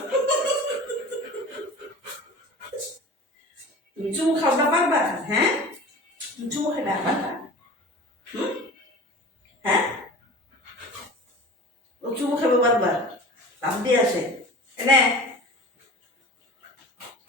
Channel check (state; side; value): normal; both; correlation 0.38